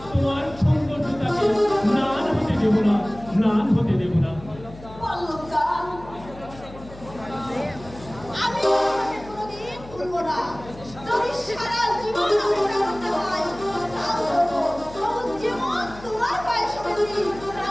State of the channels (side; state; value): left; noise; hum, 17 dB below the sound